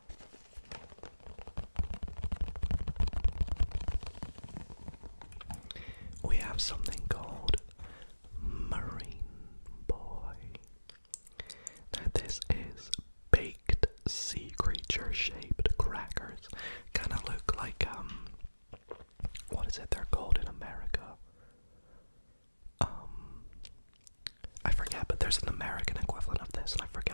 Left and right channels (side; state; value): both; inverted; correlation -1.00